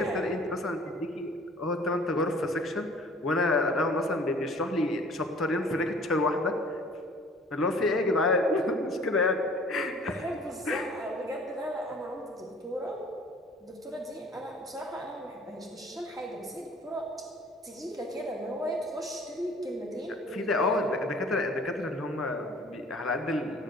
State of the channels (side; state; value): both; normal; correlation 0.51